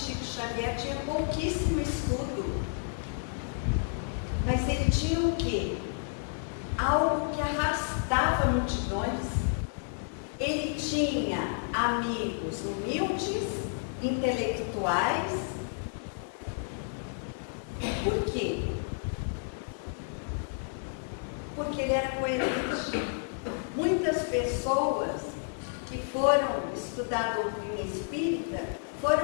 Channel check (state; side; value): silent; right; digital silence